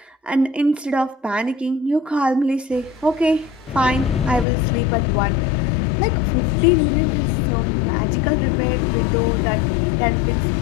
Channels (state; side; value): drops out; right; at 4.5 s